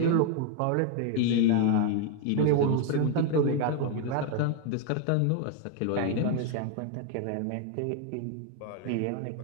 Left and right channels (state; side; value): different; both; correlation 0.01